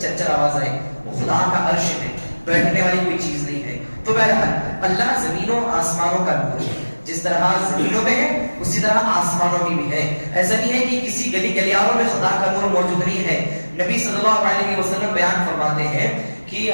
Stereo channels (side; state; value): both; inverted; correlation -1.00